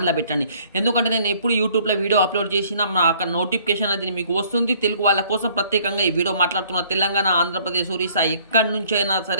పెట్టండి. ఎందుకంటే నేను ఎప్పుడు యూట్యూబ్లో వీడియో అప్లోడ్ చేసినా అక్కడ నోటిఫికేషన్ అది మీకు వస్తుంది. తెలుగు వాళ్ళ కోసం ప్రత్యేకంగా ఈ వీడియో మాట్లాడుతున్న తెలంగాణ, ఆంధ్రప్రదేశ్, ఒరిస్సా ఎక్కడి నుంచి అయినా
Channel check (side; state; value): both; inverted; correlation -0.59